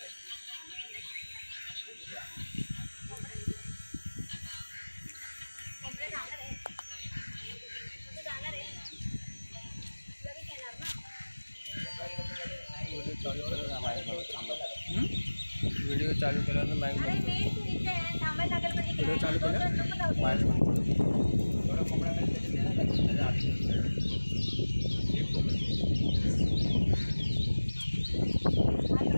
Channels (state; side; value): inverted; both; correlation -1.00